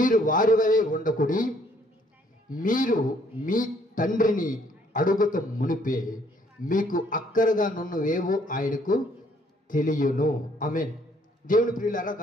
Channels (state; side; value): normal; both; correlation 0.64